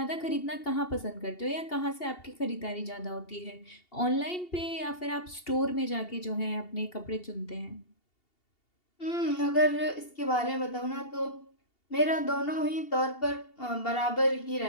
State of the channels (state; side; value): late; right; 2.8 ms